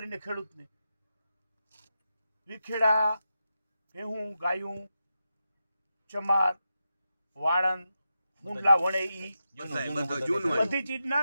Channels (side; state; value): both; inverted; correlation -0.89